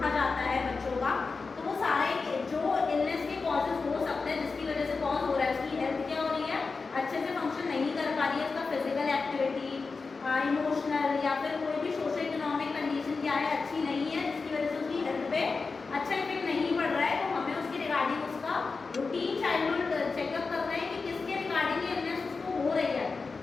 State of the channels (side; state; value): right; quieter; 4.4 dB